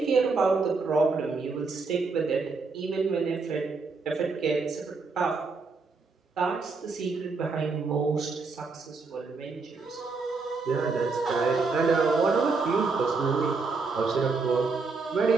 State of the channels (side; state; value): left; quieter; 4.3 dB